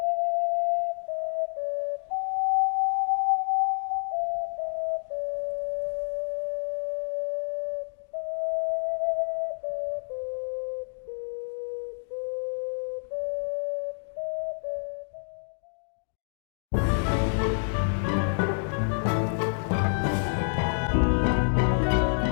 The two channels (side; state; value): right; silent; digital silence